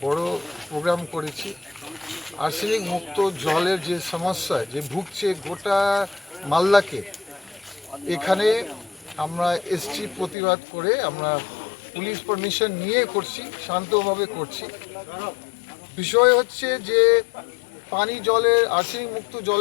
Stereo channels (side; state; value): right; drops out; at 10.4 s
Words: বড় প্রোগ্রাম করেছি। আর্সেনিক মুক্ত জলের যে সমস্যা যে ভুগছে গোটা মালদাকে, এখানে আমরা এসছি প্রতিবাদ করে। আমরা পুলিশ পারমিশন নিয়ে করছি, শান্তভাবে করছি। বিষয় হচ্ছে যে পানি জলের আর্সেনিক মুক্ত